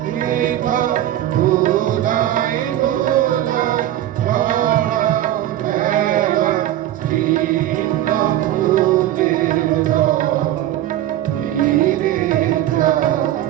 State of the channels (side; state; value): left; quieter; 12.9 dB